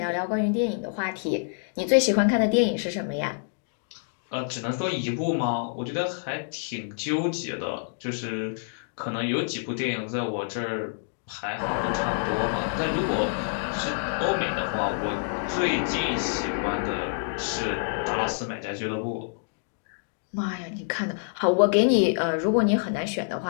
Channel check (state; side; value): silent; right; digital silence